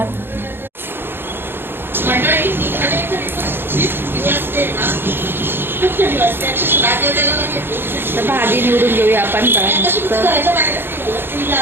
तर भाजी निवडून घेऊया आपण.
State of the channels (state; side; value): late; left; 0.10 ms